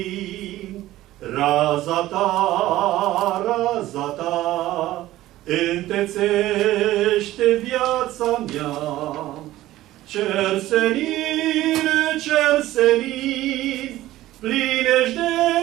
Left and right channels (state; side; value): quieter; left; 15.5 dB